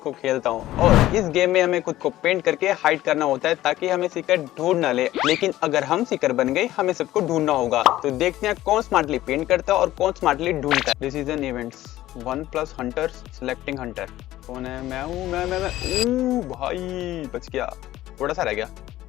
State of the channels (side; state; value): right; quieter; 15.0 dB